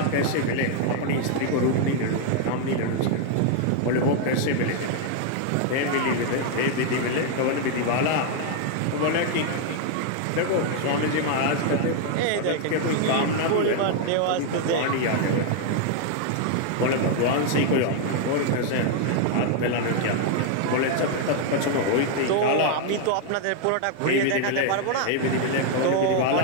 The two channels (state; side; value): different; both; correlation 0.00